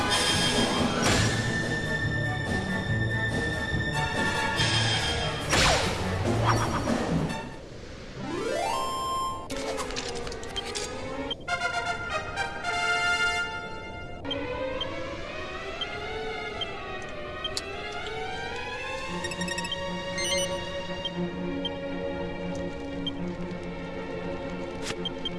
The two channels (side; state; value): both; identical; correlation 1.00